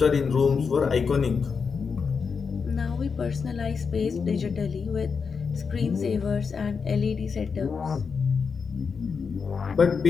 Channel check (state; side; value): quieter; right; 5.6 dB